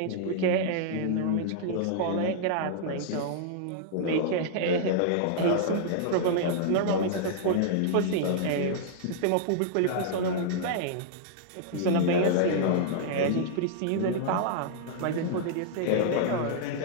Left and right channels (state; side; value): different; both; correlation -0.01